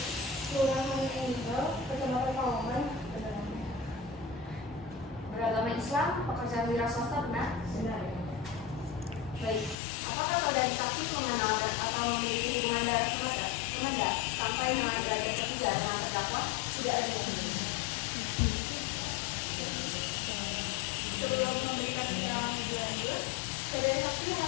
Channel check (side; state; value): right; drops out; at 9.8 s